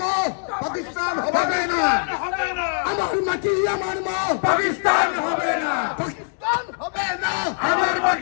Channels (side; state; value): right; silent; digital silence